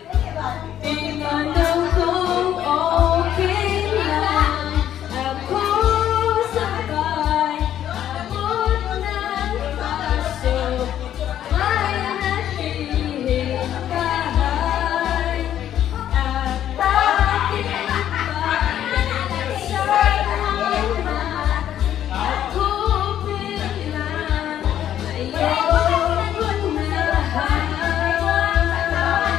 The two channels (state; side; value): quieter; right; 10.9 dB